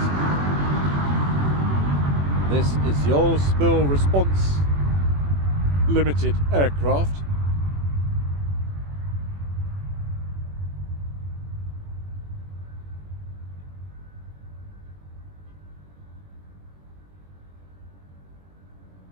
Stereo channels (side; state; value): left; late; 21 ms